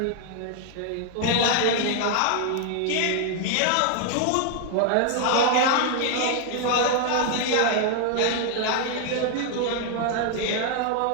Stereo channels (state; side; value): different; both; correlation 0.00